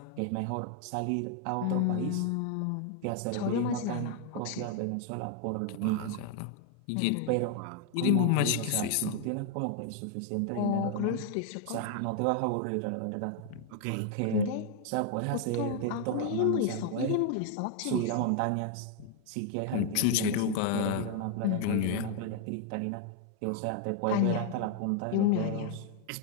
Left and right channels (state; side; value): different; both; correlation 0.00